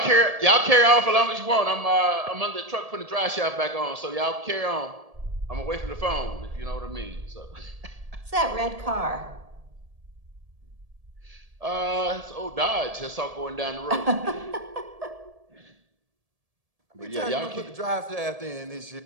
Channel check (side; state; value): left; late; 1.7 ms